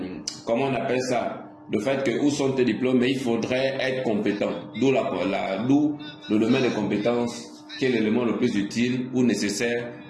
comment on appelle ça? Le fait que où sont tes diplômes, mais il faudrait être compétent. D'où le domaine des compétences, qui est l'élément le plus utile ou nécessaire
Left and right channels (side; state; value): both; identical; correlation 1.00